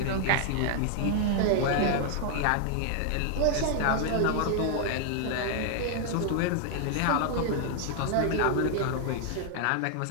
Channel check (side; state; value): both; different; correlation 0.00